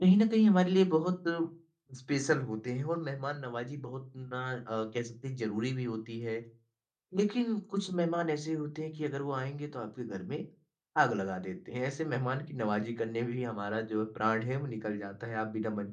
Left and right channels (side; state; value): both; identical; correlation 1.00